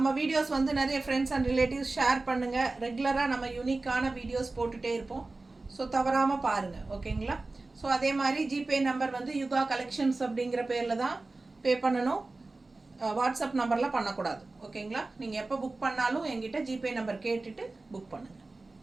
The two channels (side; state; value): left; quieter; 3.3 dB